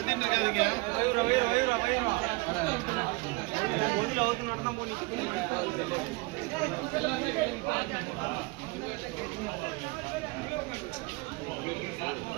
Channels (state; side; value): quieter; left; 24.9 dB